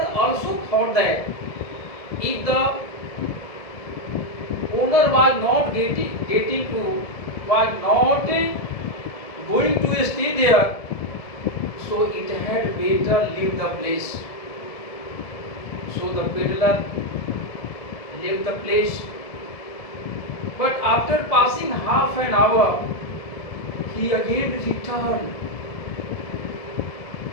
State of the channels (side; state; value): right; late; 1.7 ms